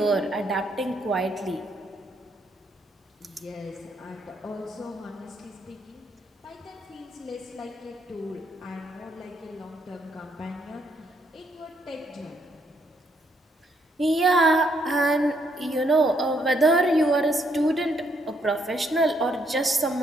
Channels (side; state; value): both; normal; correlation 0.73